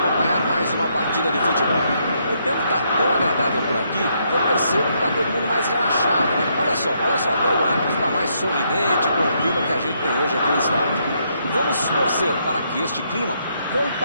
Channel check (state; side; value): inverted; both; correlation -0.75